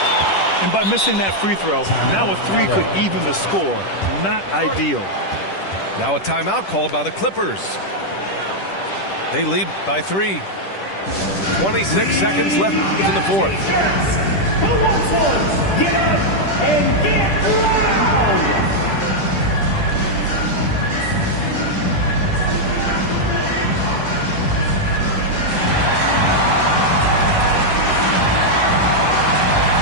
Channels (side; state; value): right; late; 10 ms